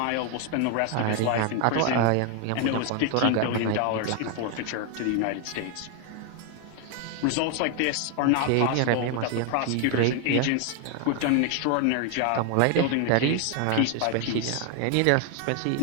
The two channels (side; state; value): both; different; correlation 0.01